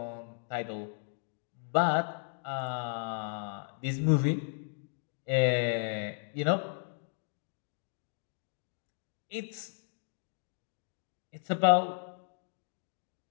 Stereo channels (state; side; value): silent; right; digital silence